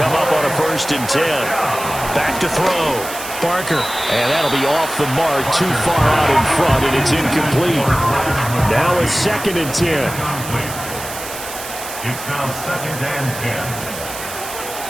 up on a 1st and 10. Back to throw. Barker. And that'll be off the mark, too far out in front, and it's incomplete. Now a 2nd and 10. It's now 2nd and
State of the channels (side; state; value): right; noise; hiss, 10 dB below the sound